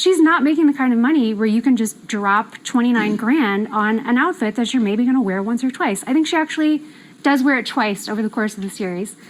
not making the kind of money where you can just drop $29,000 on an outfit that you're maybe going to wear once or twice. I think she actually does wear it twice over the course of the series.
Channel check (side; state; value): both; identical; correlation 1.00